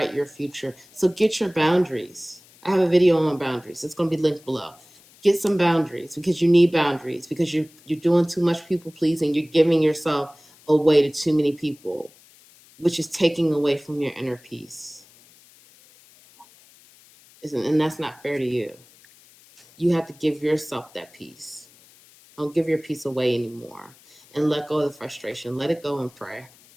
your future. So get your boundaries. I have a video on boundaries. It's going to be linked below. Get some boundaries, because you need boundaries, because you're doing too much people pleasing. You're giving yourself away to too many people, which is taking away from your inner peace. And that's not fair to you. You have to give yourself that peace. Don't give your peace away anymore. And let go of the frustration. Let it go and pray.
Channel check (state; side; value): noise; left; hiss, 27 dB below the sound